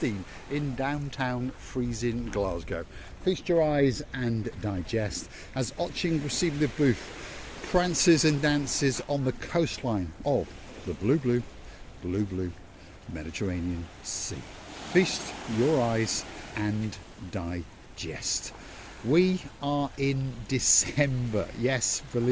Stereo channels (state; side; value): identical; both; correlation 1.00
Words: in downtown freezing Glasgow. Feast your eyes and digest as Otching receiving the booth prances and dances on the coastline of the blue Mediterranean Sea. Feast your eyes and digest. We are in December, yes,